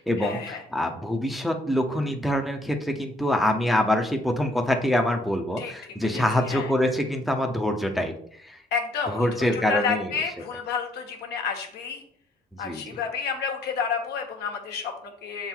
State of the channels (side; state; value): both; normal; correlation 0.67